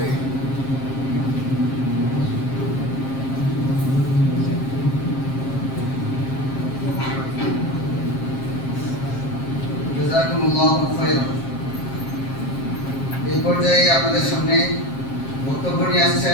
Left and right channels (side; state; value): right; late; 7.5 ms